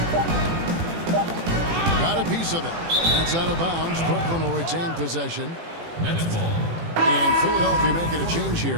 Got a piece of it. That's out of bounds. Brooklyn will retain possession. Nets ball. And Philadelphia making a change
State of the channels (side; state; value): left; late; 18 ms